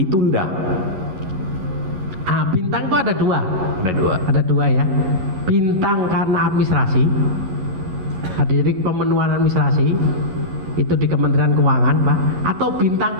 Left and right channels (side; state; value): left; late; 11 ms